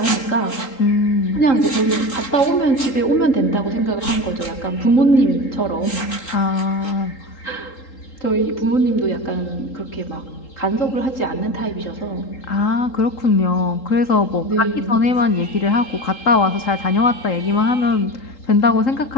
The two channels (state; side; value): late; right; 3.8 ms